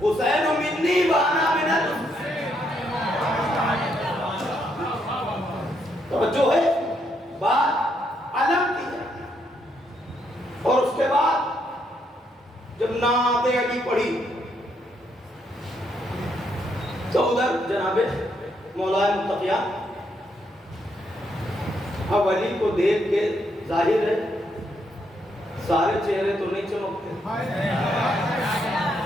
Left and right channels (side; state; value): both; normal; correlation 0.76